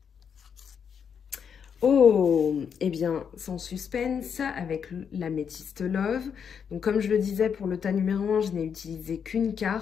Oh, eh bien, sans suspense, avec l'améthyste Love. Donc, comme je le disais, pour le tas numéro 1, je n'ai utilisé qu'une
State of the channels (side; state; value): right; quieter; 7.2 dB